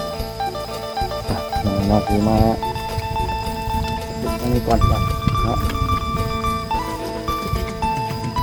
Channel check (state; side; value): identical; both; correlation 1.00